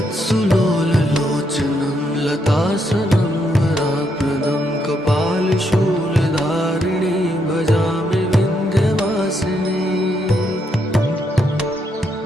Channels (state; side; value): normal; both; correlation 0.77